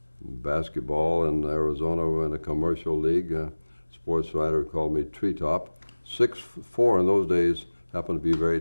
Basketball in Arizona in a commercial league, sports writer called me Treetop. 6'4" in those days happened to be very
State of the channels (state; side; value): inverted; both; correlation -1.00